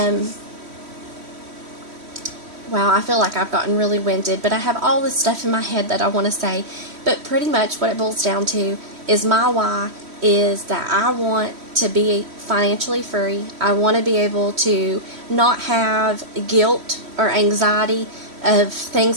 wow, I feel like I've gotten really winded, but I have all this stuff in my head that I want to say. But pretty much what it boils down to is my why is that I want to be financially free. I want to be able to not have guilt or anxiety of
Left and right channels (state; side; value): late; left; 3.1 ms